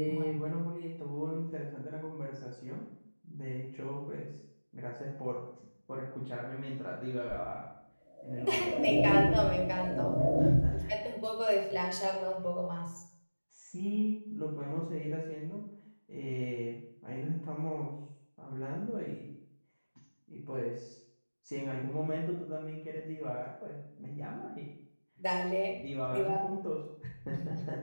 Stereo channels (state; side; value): inverted; both; correlation -1.00